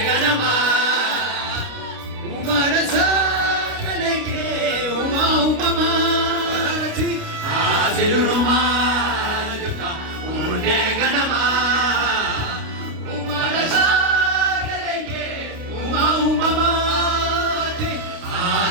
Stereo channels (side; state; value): left; late; 29 ms